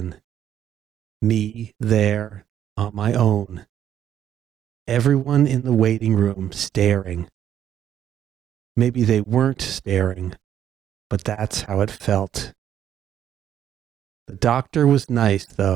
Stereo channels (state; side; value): quieter; left; 10.3 dB